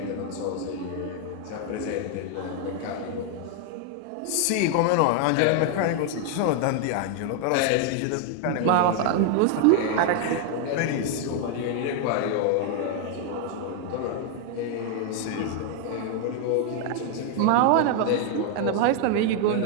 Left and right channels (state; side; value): different; both; correlation 0.00